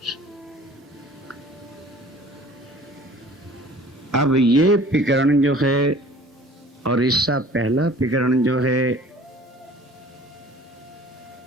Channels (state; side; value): normal; both; correlation 0.48